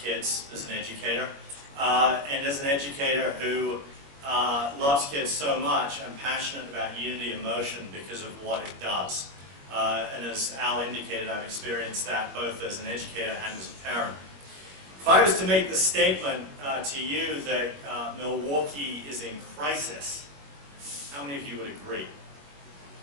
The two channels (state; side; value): late; left; 21 ms